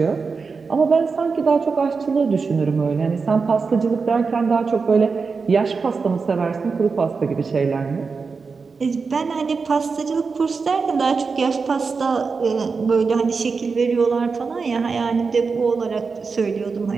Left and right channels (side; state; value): left; quieter; 4.8 dB